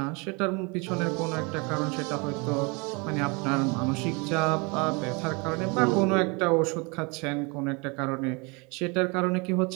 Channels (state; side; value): quieter; left; 29.7 dB